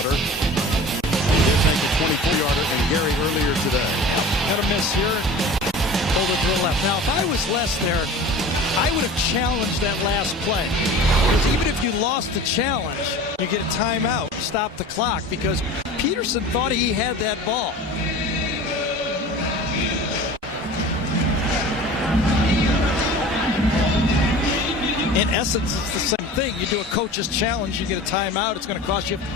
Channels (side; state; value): both; normal; correlation 0.39